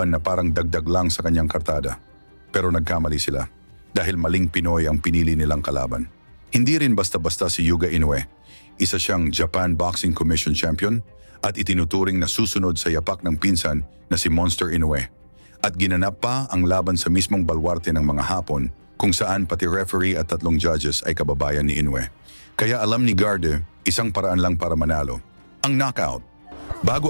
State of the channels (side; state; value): both; inverted; correlation -1.00